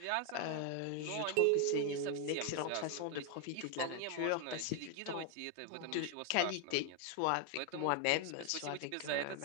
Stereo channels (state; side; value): different; both; correlation 0.00